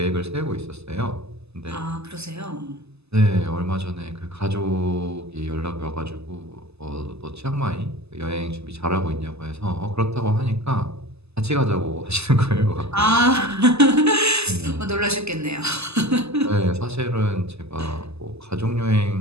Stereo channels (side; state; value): left; late; 0.79 ms